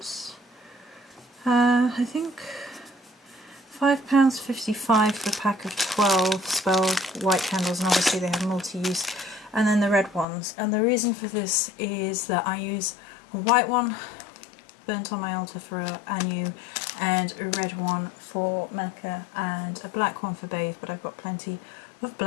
I think £5.55 for a pack of 12 spell white candles, and obviously they have multi-use. And then the red ones. And the reason for this is that I use a white one burnt on my altar for Anu, and a red one for Mecca, and a black one for Bathe, but I've got plenty of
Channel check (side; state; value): right; drops out; at 10.2 s